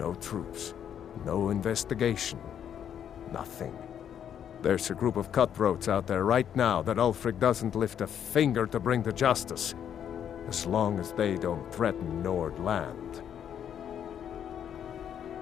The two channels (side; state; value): right; quieter; 9.1 dB